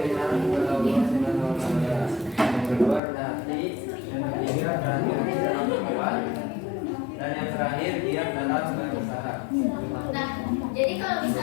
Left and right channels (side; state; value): right; drops out; at 3.0 s